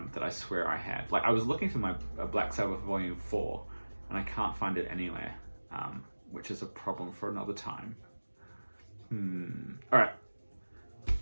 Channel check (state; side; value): inverted; both; correlation -1.00